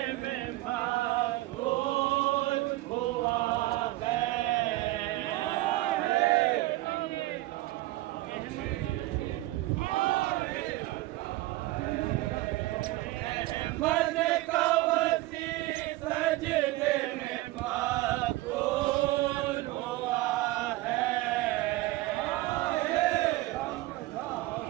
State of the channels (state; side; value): quieter; left; 18.2 dB